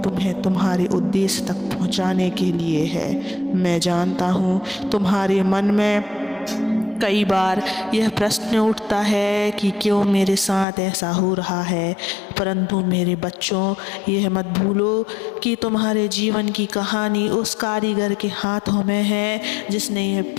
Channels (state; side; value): drops out; right; at 10.7 s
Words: तुम्हें तुम्हारे उद्देश्य तक पहुँचाने के लिए है। मैं जानता हूँ तुम्हारे मन में कई बार यह प्रश्न उठता है कि क्यों मेरे साथ ऐसा हो रहा है, परंतु मेरे बच्चों, यह मत भूलो कि तुम्हारे जीवन की कहानी उस कारीगर के हाथों में है जिसने यह